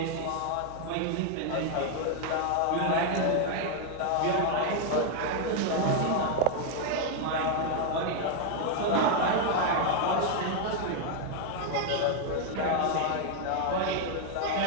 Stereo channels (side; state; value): both; different; correlation 0.00